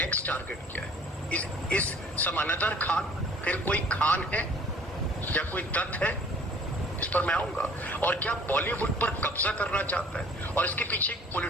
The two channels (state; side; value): normal; both; correlation 0.53